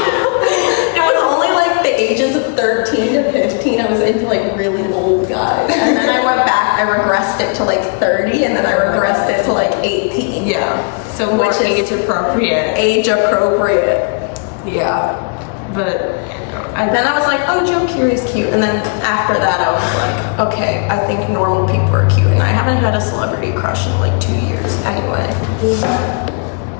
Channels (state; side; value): quieter; right; 38.0 dB